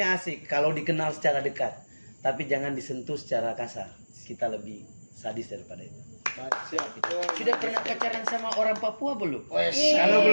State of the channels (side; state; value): both; inverted; correlation -1.00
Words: asik kalau dikenal secara dekat, tapi jangan disentuh secara kasar. Kita lebih sadis daripada itu. Baik, siap. Sudah pernah pacaran sama orang Papua belum? Wes, Kalau